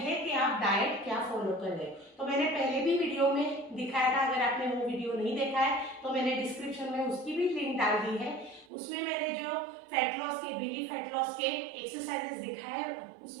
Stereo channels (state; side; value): drops out; left; at 8.7 s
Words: कि आप डाइट क्या फॉलो कर रहे हो। तो मैंने पहले भी वीडियो में दिखाया था, अगर आपने वो वीडियो नहीं देखा है तो मैंने डिस्क्रिप्शन में उसकी भी लिंक डाल दी है। उसमें मैंने जो फैट लॉस के, बेली फैट लॉस के एक्सरसाइजेस दिखाए,